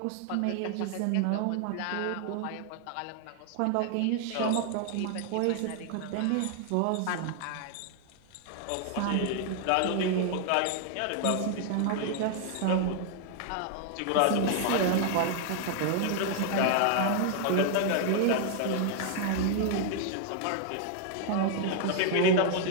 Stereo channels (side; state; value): both; different; correlation 0.00